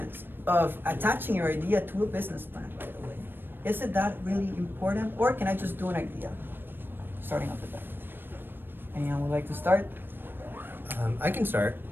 of attaching your idea to a business plan right away? Is it that really important, or can I just do an idea starting off the bat? Anyone would like to start? I can start.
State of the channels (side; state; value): left; late; 0.097 ms